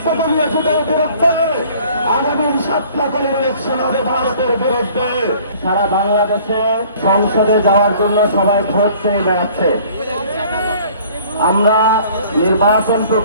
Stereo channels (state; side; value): inverted; both; correlation -0.53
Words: বিরুদ্ধে, আগামী সপ্তাহের ইলেকশন হবে ভারতের বিরুদ্ধে। সারা বাংলাদেশে সংসদে যাওয়ার জন্য সবাই ভোট চেয়ে বেড়াচ্ছে। আমরা নির্বাচন